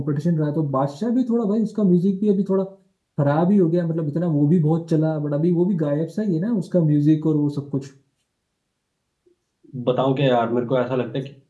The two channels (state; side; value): identical; both; correlation 1.00